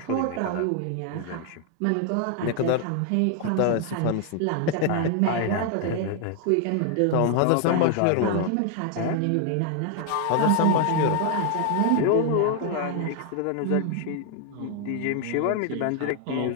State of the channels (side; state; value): both; different; correlation 0.00